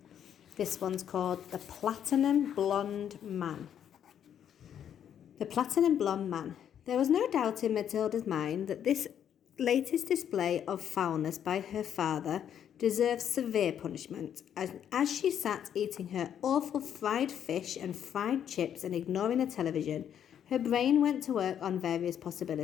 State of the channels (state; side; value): quieter; right; 9.3 dB